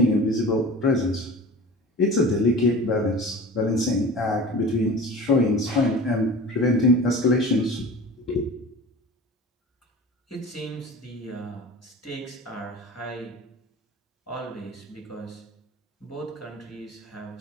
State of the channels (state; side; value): normal; both; correlation 0.37